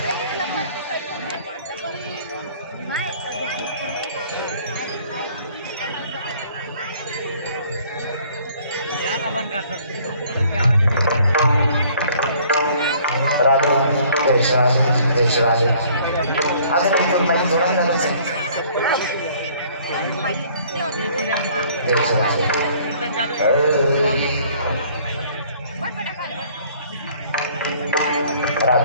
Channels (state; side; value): inverted; both; correlation -0.57